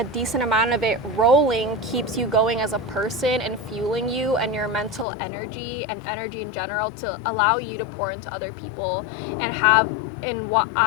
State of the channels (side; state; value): right; drops out; at 5.1 s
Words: decent amount of it rolling keeps you going as a person and fueling you and your mental energy and energy in general to allow you to pour into other people and have in what